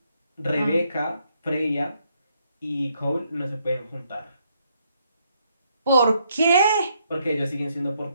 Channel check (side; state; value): both; inverted; correlation -0.73